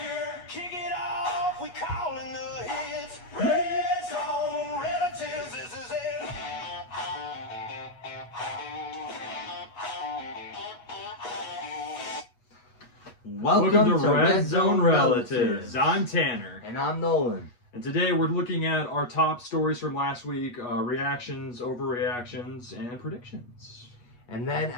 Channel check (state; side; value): late; right; 8.3 ms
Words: beer. Kick it off. We calling the hits. Red zone relatives. This is it. Welcome to Red Zone Relatives. I'm Tanner. And I'm Nolan. And today we're looking at our top stories from last week, reactions, overreactions, and predictions. And then